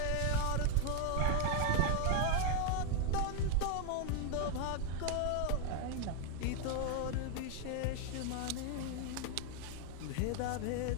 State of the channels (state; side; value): different; both; correlation 0.01